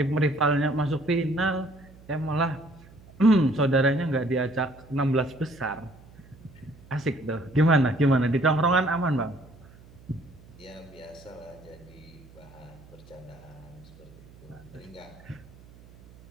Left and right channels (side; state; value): right; noise; hum, 23 dB below the sound